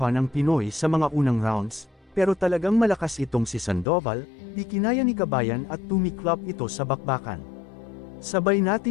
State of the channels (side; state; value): right; drops out; at 3.9 s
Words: ang Pinoy sa mga unang rounds, pero talagang malakas itong si Sandoval, di kinaya ni Kabayan at tumiklop ito sa bakbakan. Sabay